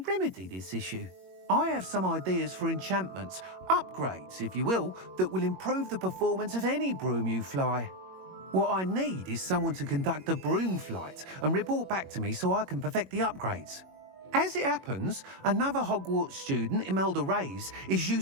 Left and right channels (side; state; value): left; late; 21 ms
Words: remedy this issue. I have some ideas for enchantments, upgrades, if you will, that will improve the performance of any broom you fly. What I need is someone to conduct a broom flight and report back to me so I can perfect the upgrades. As it happens, another Hogwarts student, Imelda Reyes, is